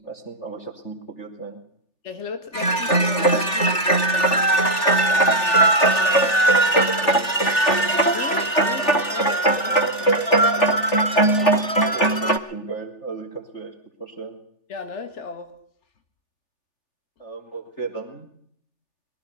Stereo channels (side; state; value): right; late; 3.4 ms